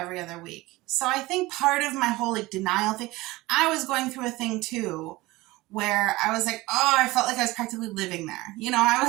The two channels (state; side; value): quieter; left; 20.0 dB